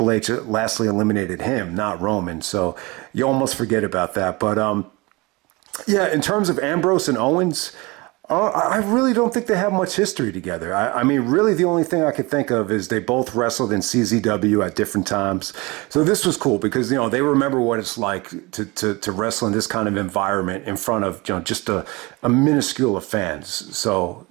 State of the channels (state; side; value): quieter; left; 24.5 dB